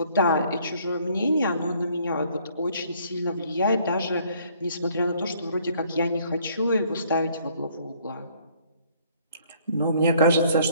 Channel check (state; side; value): inverted; both; correlation -0.62